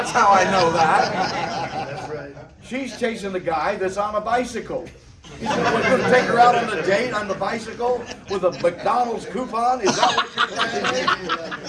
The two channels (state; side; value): identical; both; correlation 1.00